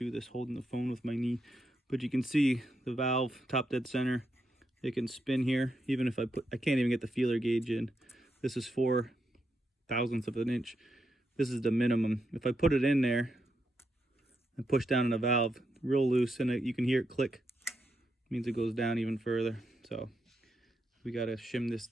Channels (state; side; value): normal; both; correlation 0.82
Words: this holding the phone with my knee. But you can see the valve top dead center. It can spin here. Even if I can't even get the feeler gauge in. This is 4 thousandths of an inch. This is the minimum. If I put it in there and push down on the valve real loose, and you can hear it click, it means it goes down even further. So we got to shim this